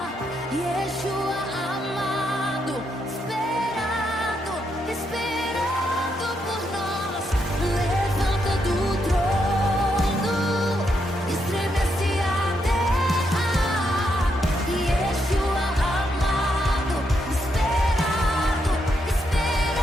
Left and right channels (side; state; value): both; normal; correlation 0.79